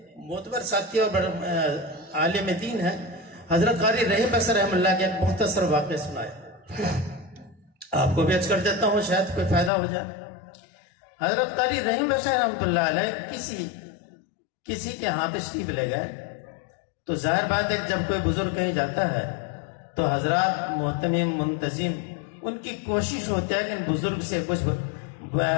معتبر ساتھی اور عالم دین ہے، حضرت قاری رحیم بصری رحم اللہ کے ایک مختصر واقعہ سنایا. آپ کو بھی عرض کر دیتا ہوں شاید کوئی فائدہ ہو جائے. حضرت قاری رحیم بصری رحمۃ اللہ علیہ کسی کے ہاں تشریف لے گئے تو ظاہر بات ہے جب کوئی بزرگ کہیں جاتا ہے تو حضرات محتمم منتظم ان کی کوشش ہوتی ہے کہ ان بزرگ سے کچھ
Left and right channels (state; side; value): drops out; right; at 9.7 s